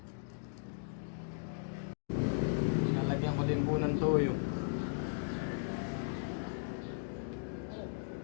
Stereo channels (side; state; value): right; silent; digital silence